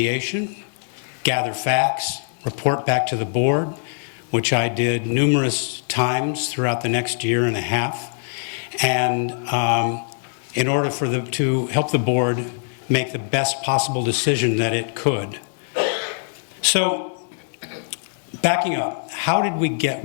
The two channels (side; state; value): right; silent; 64 dB below the other